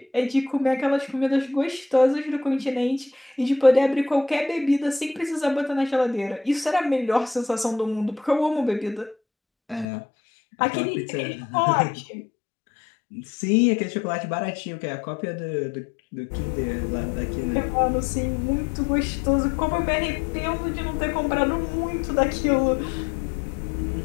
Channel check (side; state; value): right; drops out; at 9.9 s